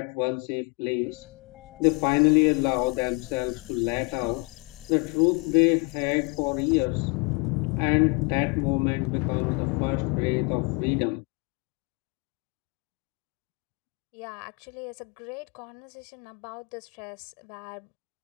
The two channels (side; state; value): right; quieter; 29.8 dB